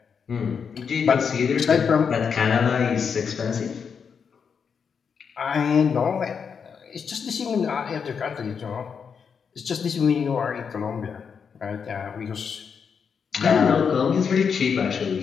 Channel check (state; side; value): quieter; right; 6.4 dB